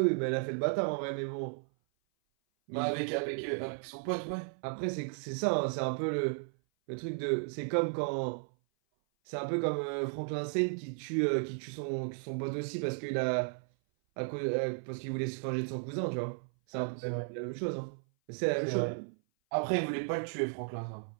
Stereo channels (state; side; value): silent; left; 55 dB below the other